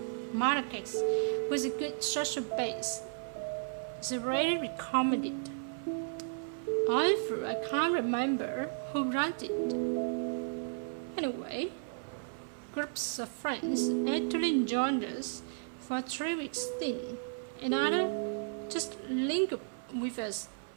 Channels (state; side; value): silent; left; 55 dB below the other